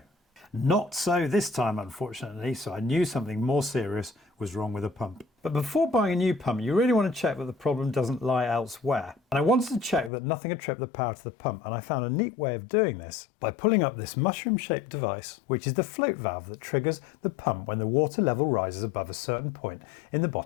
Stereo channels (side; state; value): right; drops out; at 10.1 s